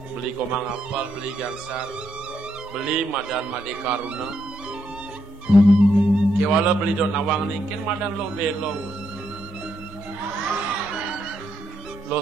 beli komang apal, beli gangsar, beli madan made karuna. Kewala beli don nawang ningkin madan lo belong. Lo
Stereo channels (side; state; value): both; normal; correlation 0.79